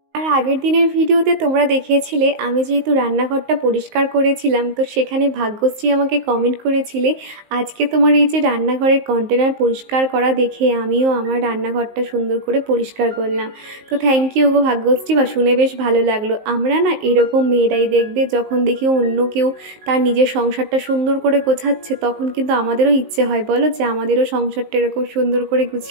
আর আগের দিনের ভিডিওতে তোমরা দেখিয়েছিলে আমি যেহেতু রান্নাঘরটা পরিষ্কার করেছিলাম, তো সেখানে ভাগ্যশ্রী আমাকে কমেন্ট করেছিলে আজকে তোমার এই যে রান্নাঘরের কন্টেনার পরিষ্কার করা দেখে আমিও আমার রান্নাঘরটা সুন্দর করে পরিষ্কার করলাম। তো থ্যাংক ইউ গো ভাগ্যশ্রী, বা শুনে বেশ ভালো লাগলো। আমরা না এরকম মেয়েরাই দেখবে যখন দেখি অন্য কেউ তার নিজের সংসারটা সুন্দর করে গোছাচ্ছে, তখন কিন্তু আমাদেরও ইচ্ছে হয় বলো যে আমাদেরও সংসারটা এরকম সুন্দর করে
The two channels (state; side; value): late; left; 19 ms